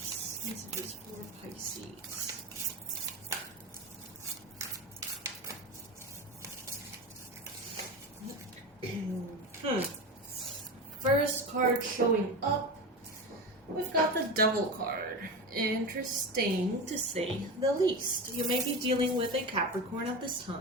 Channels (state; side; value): normal; both; correlation 0.24